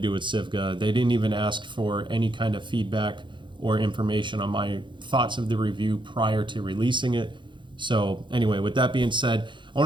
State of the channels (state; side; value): late; left; 0.23 ms